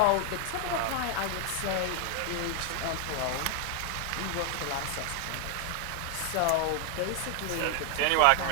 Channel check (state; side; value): different; both; correlation 0.00